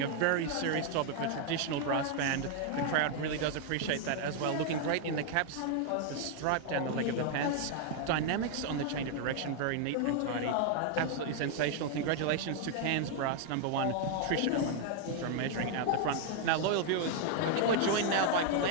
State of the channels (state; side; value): different; both; correlation 0.00